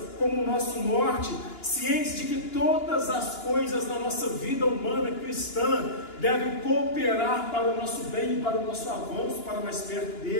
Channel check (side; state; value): right; late; 2.9 ms